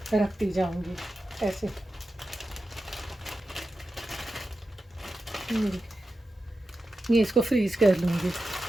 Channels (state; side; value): normal; both; correlation 0.91